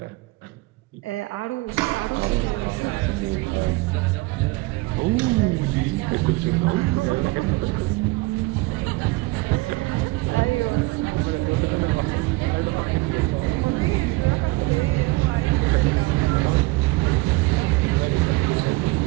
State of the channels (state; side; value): quieter; left; 22.5 dB